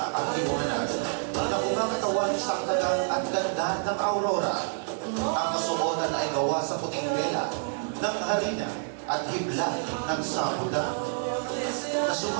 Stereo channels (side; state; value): left; silent; digital silence